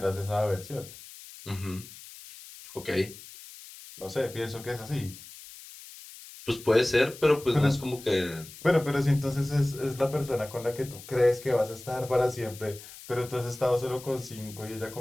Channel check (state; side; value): noise; left; hiss, 17 dB below the sound